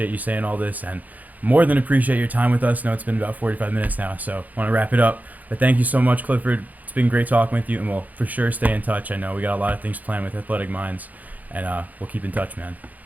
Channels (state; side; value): late; left; 0.079 ms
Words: you saying all this, and more than appreciate your time with us. I know it's been about 45 minutes now, so I want to wrap it up. But thank you so much, Clifford. It's been great talking with you, and we'll for sure stay in touch. I know we got a lot of things planned with Athletic Minds, and we'll keep in touch, man.